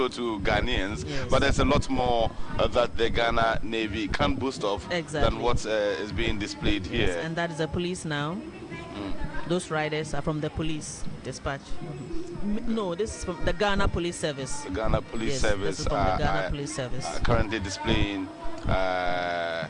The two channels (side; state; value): both; identical; correlation 1.00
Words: to Ghanaians. Yes. But there's a lot more that the Ghana Navy can boast of than what is being displayed here. Yes, and that is the police now. Those riders are from the police dispatch. No, this is from the Ghana Police Service. The Ghana Police Service. This is from the Ghana Police Service. Currently displaying,